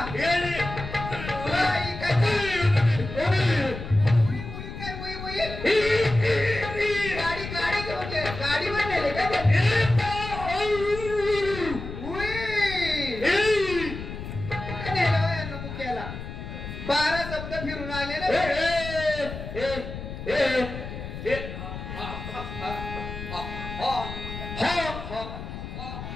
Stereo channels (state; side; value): noise; left; rumble, 9 dB below the sound